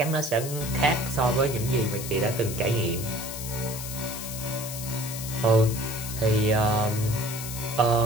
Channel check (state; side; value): noise; left; hiss, 8 dB below the sound